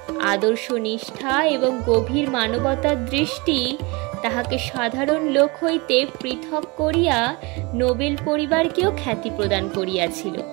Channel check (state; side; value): quieter; left; 26.7 dB